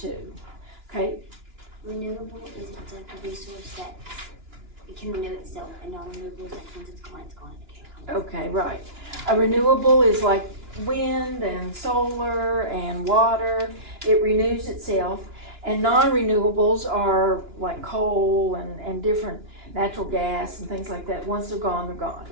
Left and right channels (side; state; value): left; late; 2.9 ms